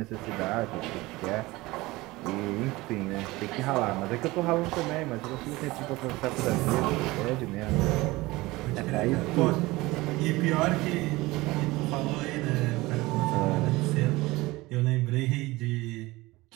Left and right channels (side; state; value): left; quieter; 20.6 dB